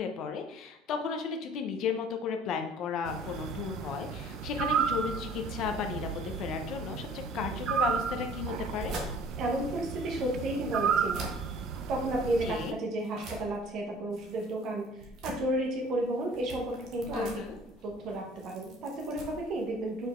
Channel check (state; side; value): normal; both; correlation 0.50